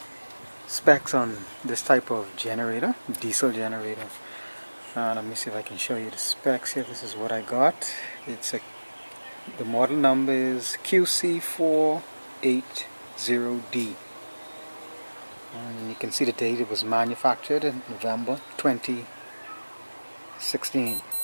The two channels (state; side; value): inverted; both; correlation -1.00